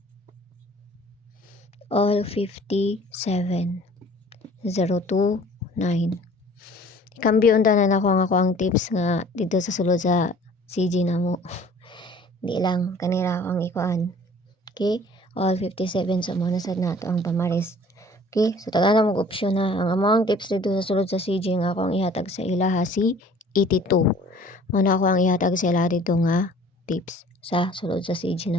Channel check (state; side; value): normal; both; correlation 0.51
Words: All 57 029. Kambyo unta na ako ang tips nga dito sa sulod sa CG na mo. Di lang kanila akong ikuan. Okay? All 57 sa mga nasad na ito ang pamaris. Okay? So taga na mag-opsyon na. Ang among tips dito sa sulod sa CG nga ako ang ihatag sa ilaha si 82. Muna ako ang ihatag sa ilaha dito nga tips sa sulod sa CG